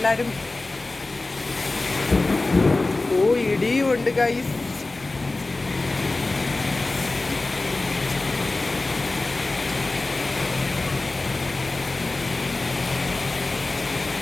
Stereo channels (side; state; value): right; quieter; 3.2 dB